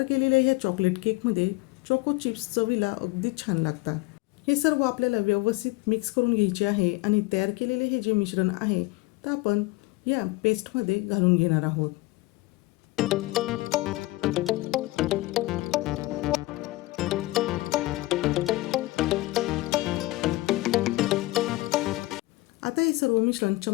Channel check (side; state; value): right; quieter; 20.2 dB